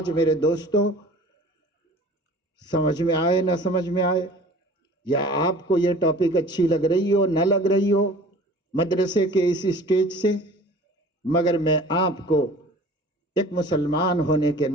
میرے دوستو، سمجھ میں آئے نہ سمجھ میں آئے، یا آپ کو یہ ٹاپک اچھی لگ رہی ہو نہ لگ رہی ہو مدرسے کے اس اسٹیج سے، مگر میں آپ کو ایک مسلمان ہونے کے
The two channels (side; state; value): both; normal; correlation 0.45